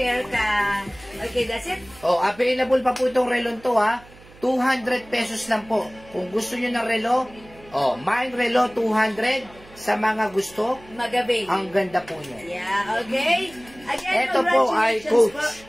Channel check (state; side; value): noise; right; hum, 23 dB below the sound